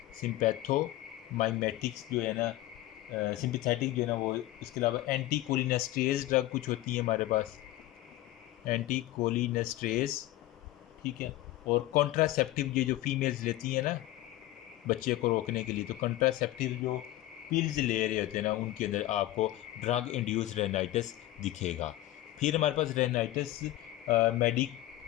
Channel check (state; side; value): quieter; right; 15.9 dB